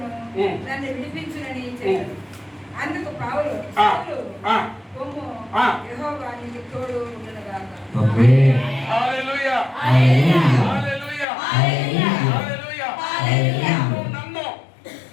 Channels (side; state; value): right; drops out; at 11.2 s